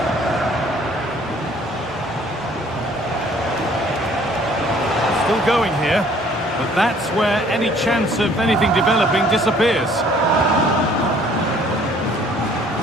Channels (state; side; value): normal; both; correlation 0.57